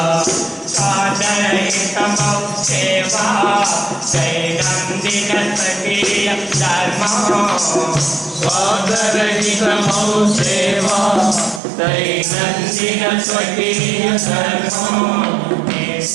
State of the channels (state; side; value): drops out; left; at 11.6 s